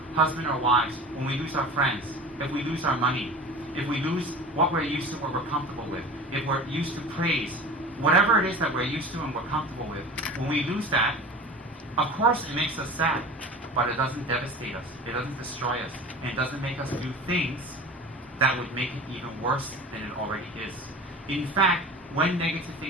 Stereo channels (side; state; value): both; normal; correlation 0.37